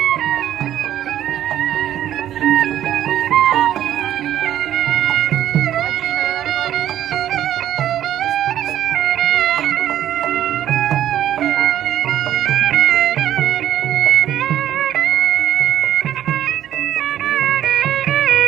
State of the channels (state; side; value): quieter; left; 11.6 dB